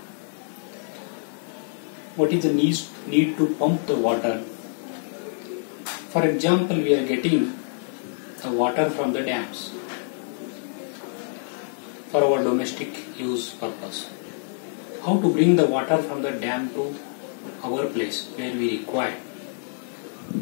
What is the need to pump the water? For example, we are getting the water from the dams for our domestic use purpose. How to bring the water from the dam to our place where we require?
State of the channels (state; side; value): silent; right; digital silence